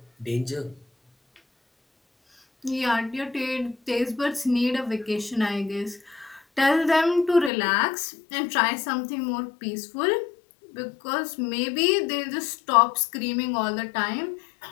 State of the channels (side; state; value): right; drops out; at 7.5 s